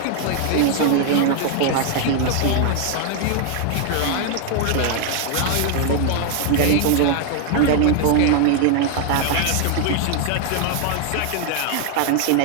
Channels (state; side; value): different; both; correlation 0.00